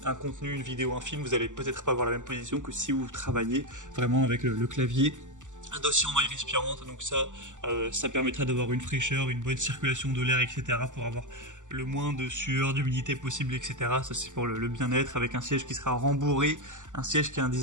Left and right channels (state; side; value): late; left; 0.86 ms